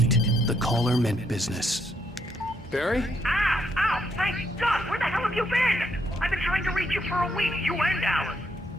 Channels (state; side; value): normal; both; correlation 0.75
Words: The caller meant business. Barry? Ow! Ow! Thank God! Where the hell have you been? I've been trying to reach you for a week, you and Alice.